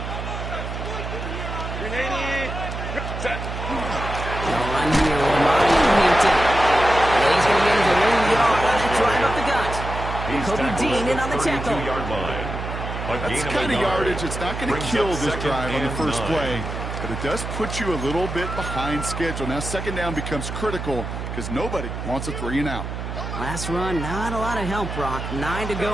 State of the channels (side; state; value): right; noise; hum, 6 dB below the sound